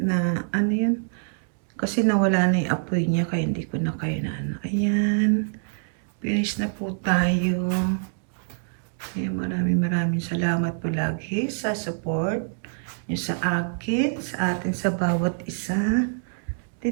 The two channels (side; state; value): left; silent; digital silence